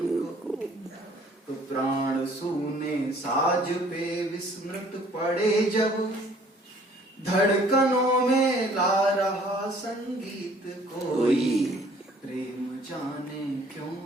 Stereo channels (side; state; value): both; normal; correlation 0.57